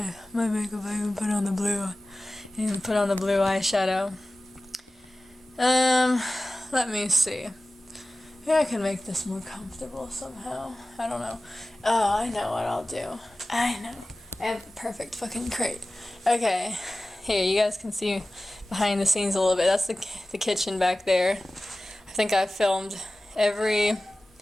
makeup. I even put on the blue. Eyeshadow. Let me see. Maybe I can make this more comfortable somehow. I don't know. Oh, I know what I'll do. I know. I have the perfect fucking crate. Okay. Here, you guys can see behind the scenes a little bit. That's the kitchen back there. I think I filmed everything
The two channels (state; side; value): normal; both; correlation 0.97